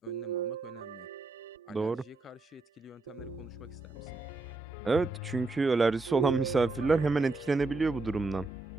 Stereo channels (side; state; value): left; quieter; 3.4 dB